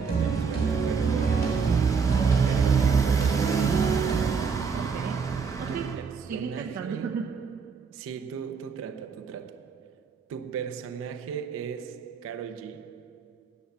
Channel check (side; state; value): left; quieter; 5.7 dB